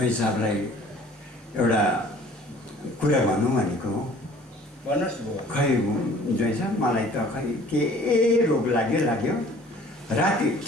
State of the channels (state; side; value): normal; both; correlation 0.51